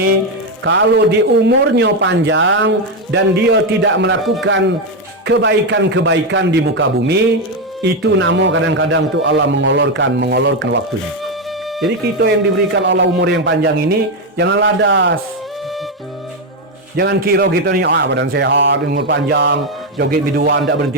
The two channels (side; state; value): both; normal; correlation 0.07